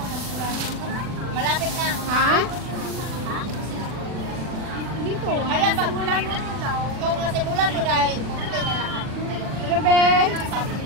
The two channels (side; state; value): left; late; 40 ms